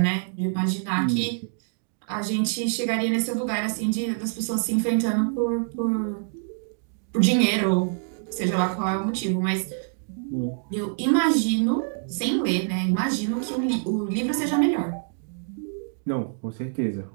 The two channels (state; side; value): silent; left; digital silence